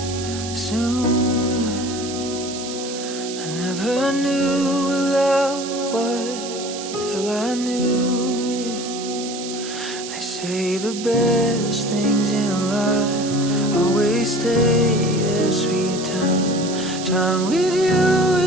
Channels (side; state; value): right; noise; hiss, 10 dB below the sound